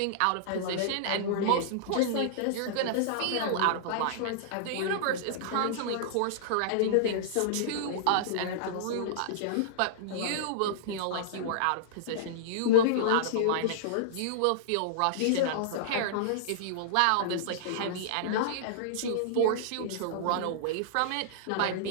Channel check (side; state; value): both; different; correlation -0.02